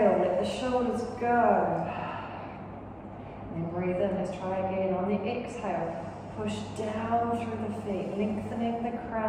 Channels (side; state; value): both; identical; correlation 1.00